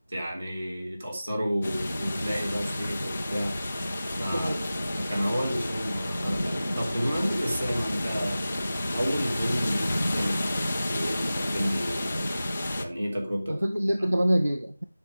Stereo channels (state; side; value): inverted; both; correlation -0.96